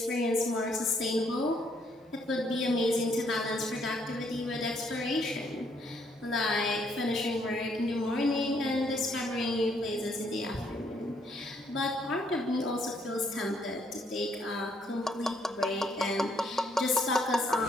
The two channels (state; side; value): normal; both; correlation 0.70